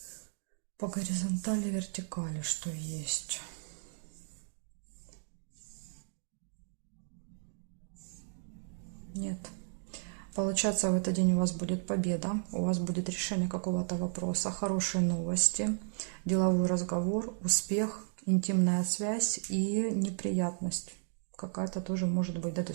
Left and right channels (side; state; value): left; silent; digital silence